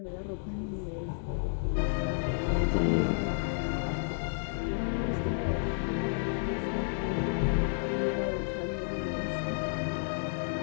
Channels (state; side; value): silent; right; digital silence